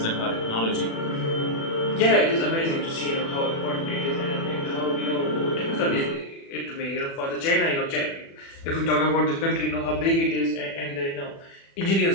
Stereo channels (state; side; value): late; right; 36 ms